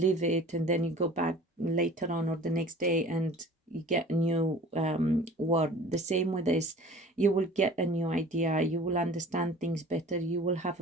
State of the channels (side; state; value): both; normal; correlation 0.45